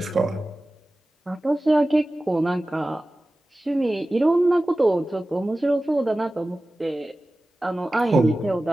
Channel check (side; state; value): both; normal; correlation 0.96